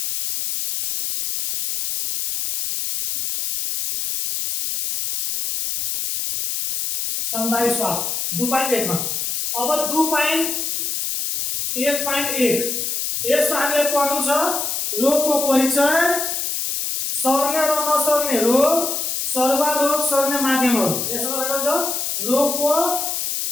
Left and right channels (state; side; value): noise; left; hiss, 2 dB below the sound